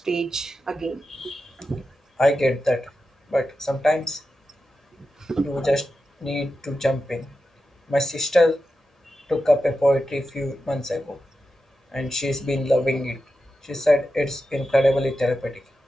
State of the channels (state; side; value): normal; both; correlation 0.90